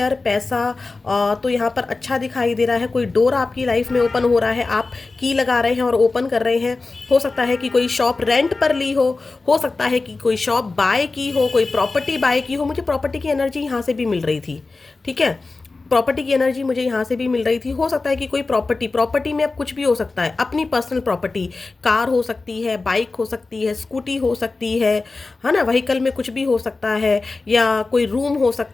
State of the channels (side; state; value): right; quieter; 3.7 dB